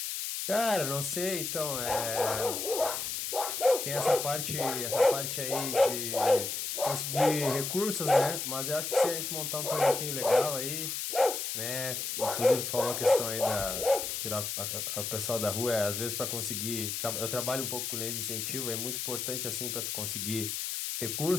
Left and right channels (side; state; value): left; noise; hiss, 3 dB below the sound